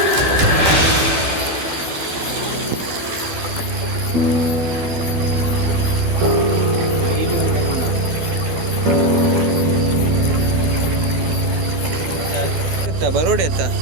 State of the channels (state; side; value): late; left; 12 ms